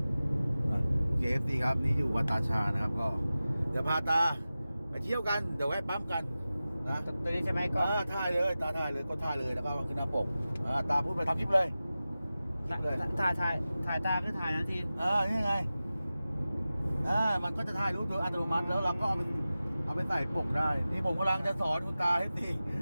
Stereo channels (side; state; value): both; inverted; correlation -0.95